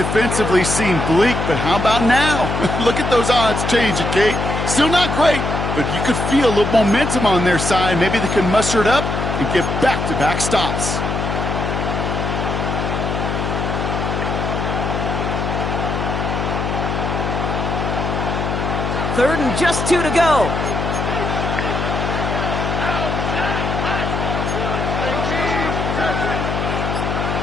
seem bleak, but how about now? Look at those odds changing, Kate. Still not great, but you could feel a little momentum on their side. Maybe they can muster it up and get back-to-back stops. Third and just 2 to go.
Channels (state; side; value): noise; left; hum, 2 dB below the sound